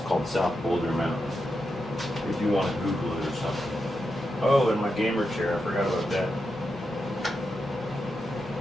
South Boulder Mountain. If you want to Google it or something. Oh, and my gamer chair, I forgot about that.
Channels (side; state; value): both; normal; correlation 0.87